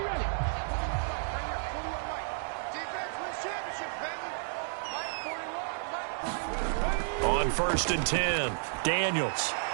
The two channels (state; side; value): silent; left; digital silence